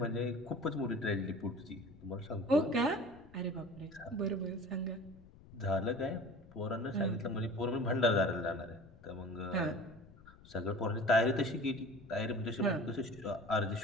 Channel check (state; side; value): noise; left; rumble, 22 dB below the sound